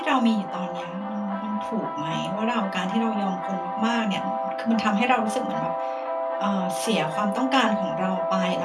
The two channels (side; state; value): both; identical; correlation 1.00